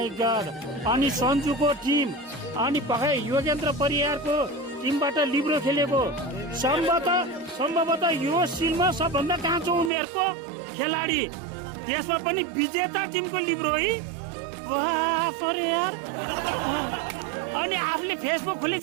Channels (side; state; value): left; drops out; at 9.9 s